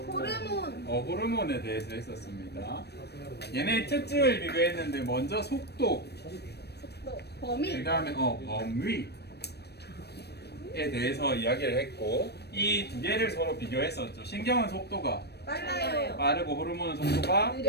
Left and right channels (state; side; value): late; right; 0.47 ms